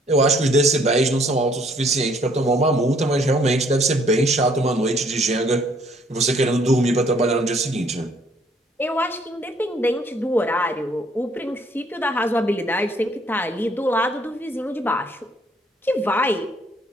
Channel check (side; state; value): both; normal; correlation 0.63